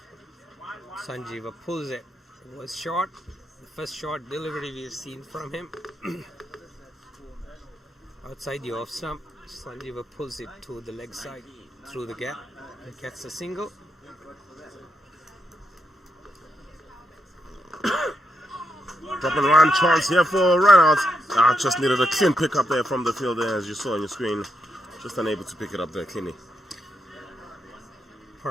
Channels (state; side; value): normal; both; correlation 0.82